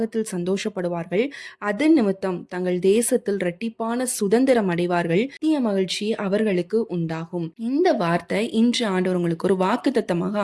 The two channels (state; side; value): identical; both; correlation 1.00